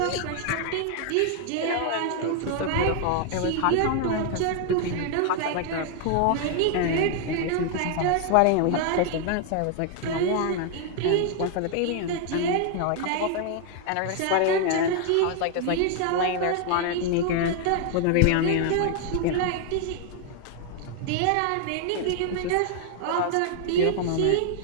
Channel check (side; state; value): both; different; correlation 0.00